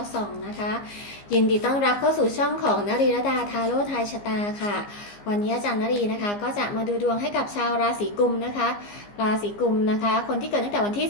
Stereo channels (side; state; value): right; late; 15 ms